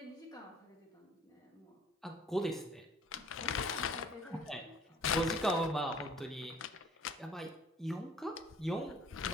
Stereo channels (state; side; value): normal; both; correlation 0.54